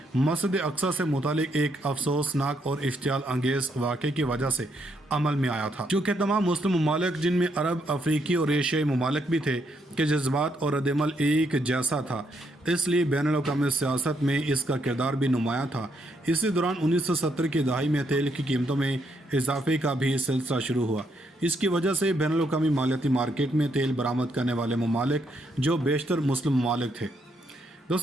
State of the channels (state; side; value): normal; both; correlation 0.75